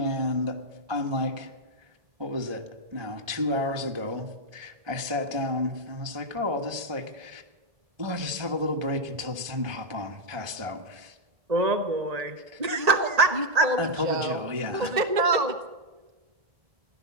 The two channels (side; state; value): left; late; 1.3 ms